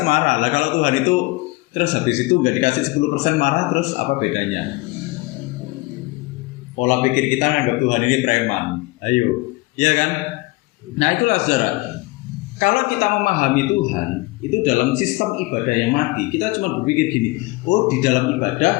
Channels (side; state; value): right; quieter; 22.5 dB